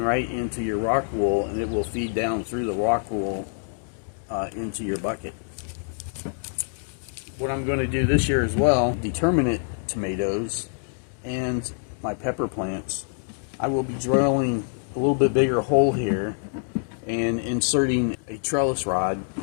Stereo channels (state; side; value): silent; right; digital silence